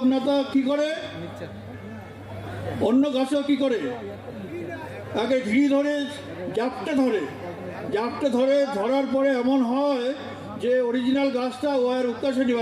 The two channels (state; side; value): identical; both; correlation 1.00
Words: কি করে? অন্য গাছও কি করে? আগে ঘিরি ধরে জাপটে ধরে, ধরার পরে এমন হয় যে অরিজিনাল গাছটা ও আর উৎকাশে